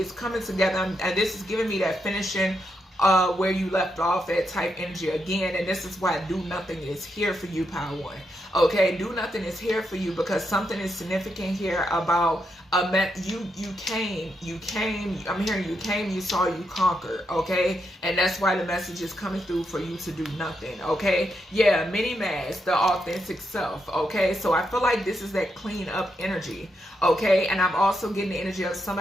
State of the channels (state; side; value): normal; both; correlation 0.82